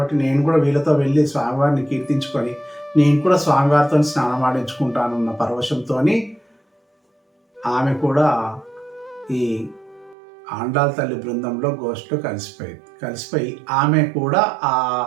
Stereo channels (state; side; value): drops out; left; at 10.2 s